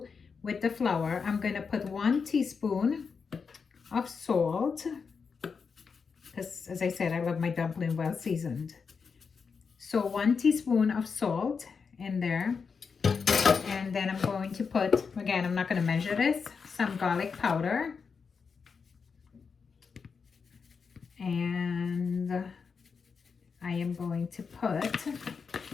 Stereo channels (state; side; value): quieter; right; 5.6 dB